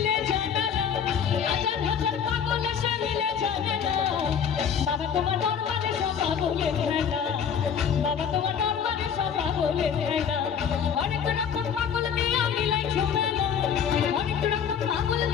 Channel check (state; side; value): quieter; right; 7.5 dB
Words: জানালা, হাজার হাজার পাগল এসে মিলে জানালা। বাবা তোমার দরবারে সব পাগলের খেলা, বাবা তোমার দরবারে সব পাগলের খেলা। অনেক রকম পাগল দিয়া মিলাই ঝুমেলা, অনেক রকম পাগল